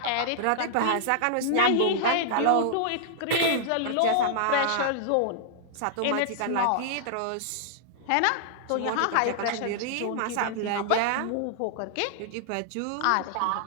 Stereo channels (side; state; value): both; different; correlation -0.01